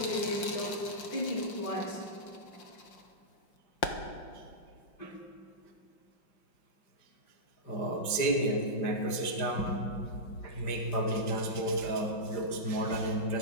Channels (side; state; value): right; late; 5.1 ms